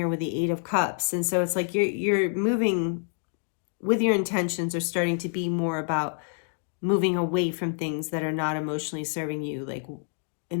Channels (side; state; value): right; silent; 60 dB below the other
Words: with the Eight of Cups. And so it's like you're moving with your intentions are starting to be more about moving away from things that are not emotionally serving you, like,